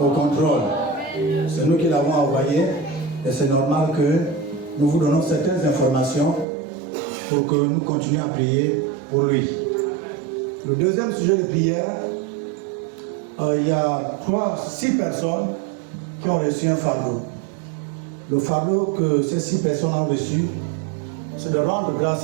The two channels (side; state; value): left; drops out; at 6.5 s